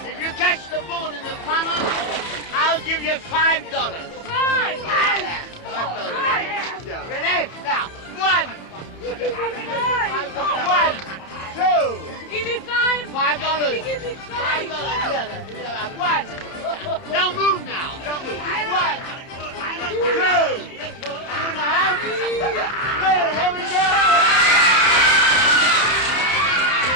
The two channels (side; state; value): right; late; 30 ms